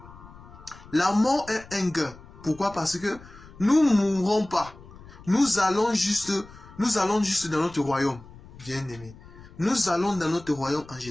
La mort est un gain. Pourquoi? Parce que nous ne mourrons pas. Nous allons juste dans notre royaume, bien-aimés. Nous allons dans notre royaume en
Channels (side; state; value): left; noise; rumble, 20 dB below the sound